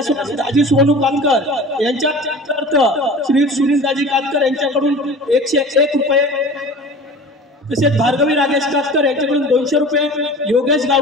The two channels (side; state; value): both; normal; correlation 0.39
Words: दाजी सोनू कातकर यांच्या अर्थ श्री सुनील दाजी कातकर यांच्याकडून 101 रुपये, तसेच भार्गवी राजेश कातकर यांच्याकडून 200 रुपये, योगेश